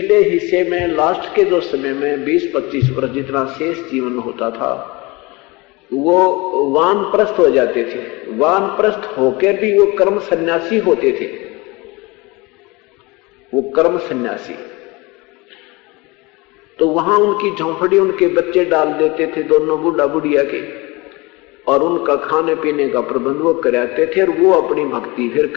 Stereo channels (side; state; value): right; quieter; 24.4 dB